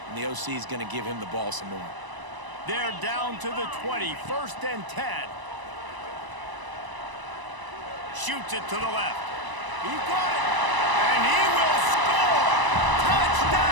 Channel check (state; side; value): late; left; 1.0 ms